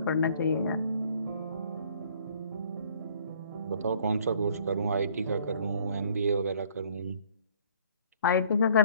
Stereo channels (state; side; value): inverted; both; correlation -0.57